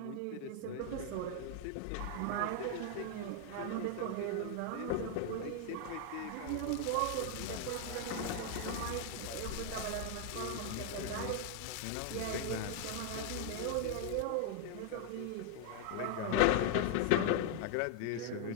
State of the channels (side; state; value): both; different; correlation 0.00